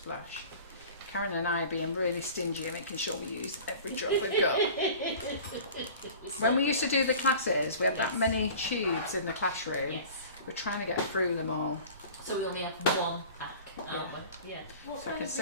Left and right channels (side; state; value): both; inverted; correlation -0.41